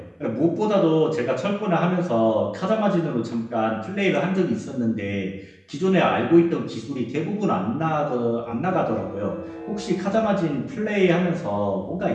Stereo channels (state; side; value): identical; both; correlation 1.00